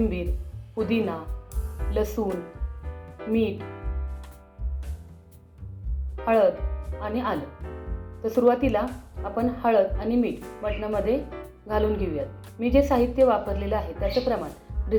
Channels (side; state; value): both; identical; correlation 1.00